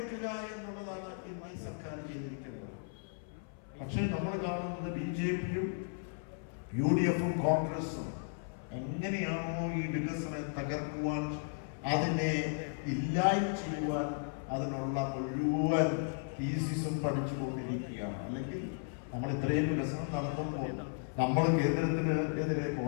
എന്നുള്ളതാണ് ഇന്ന് ഈ സർക്കാർ ചെയ്തിരിക്കുന്നത്. പക്ഷേ നമ്മൾ കാണുന്നത് BJPയും UDFും കോൺഗ്രസും എങ്ങനെയാണോ ഈ വികസനം തകർക്കുവാൻ, അതിനെ ഇല്ലായ്മ ചെയ്യുവാൻ അതിനുള്ള മുഴുവൻ തീസിസും പഠിച്ചുകൊണ്ടിരിക്കുകയാണ്. അല്ലെങ്കിൽ നമ്മൾ ഇത്രയും വികസനം നടത്തുമ്പോൾ, നമ്മൾ കേന്ദ്രത്തിന് എതിരെ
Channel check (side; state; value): right; silent; 54 dB below the other